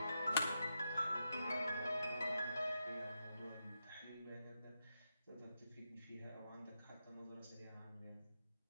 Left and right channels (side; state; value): both; inverted; correlation -0.85